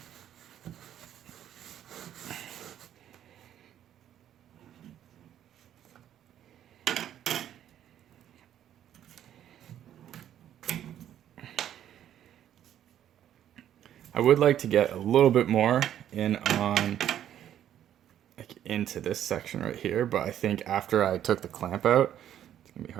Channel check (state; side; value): quieter; left; 10.8 dB